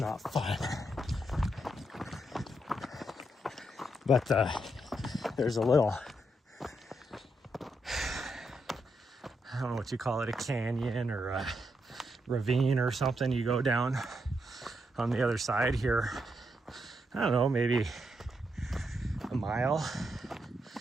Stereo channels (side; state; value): both; normal; correlation 0.80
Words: fun. But there's a little, I don't know what you call it, a canyon or a ravine or something. You go down on the other side here, I don't know, maybe a mile.